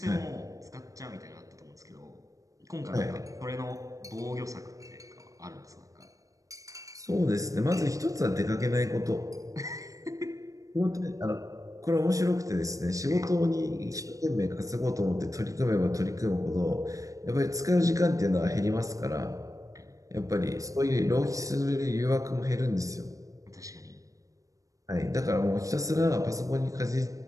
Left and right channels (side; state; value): left; late; 0.16 ms